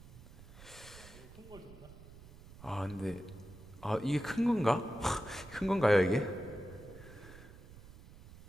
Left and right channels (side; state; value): right; noise; rumble, 18 dB below the sound